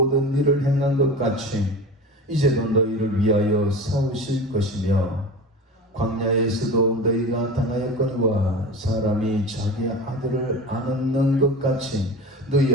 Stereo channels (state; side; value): normal; both; correlation 0.32